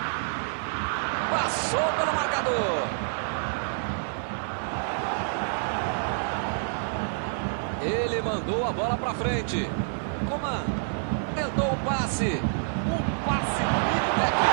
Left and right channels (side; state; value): left; silent; digital silence